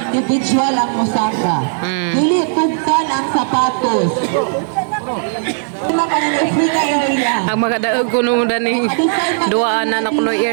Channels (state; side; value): silent; left; digital silence